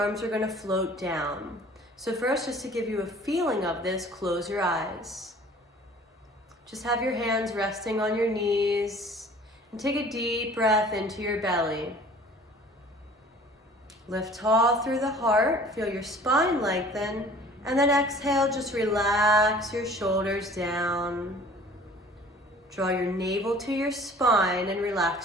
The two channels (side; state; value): both; normal; correlation 0.49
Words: are going to float down. So first, just to give you a feeling of this, close your eyes. Just have your hands resting on your knees. And take a deep breath into your belly. Lift tall through the heart, feel your spine lengthen, and then exhale, just relax your shoulders down. Draw your navel to your spine and